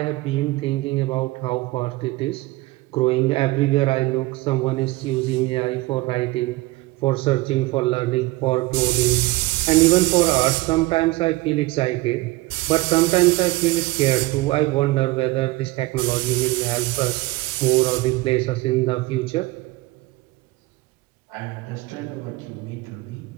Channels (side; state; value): left; quieter; 20.3 dB